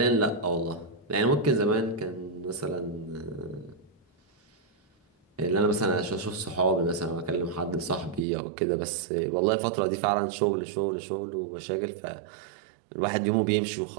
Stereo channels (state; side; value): drops out; left; at 8.2 s